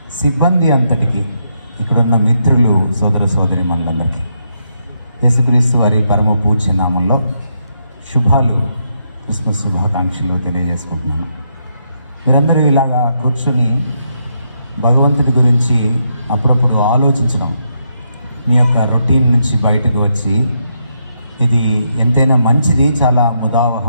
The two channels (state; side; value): inverted; both; correlation -0.79